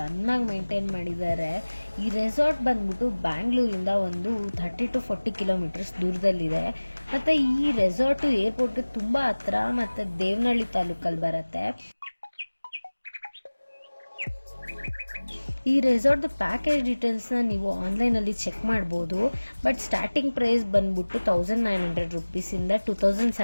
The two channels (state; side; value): inverted; both; correlation -1.00